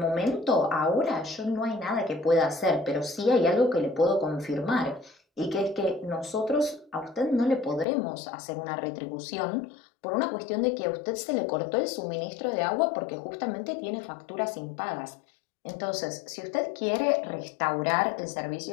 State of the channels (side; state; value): right; drops out; at 7.9 s